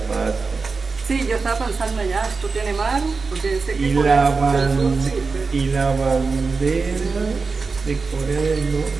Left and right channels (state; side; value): quieter; left; 4.5 dB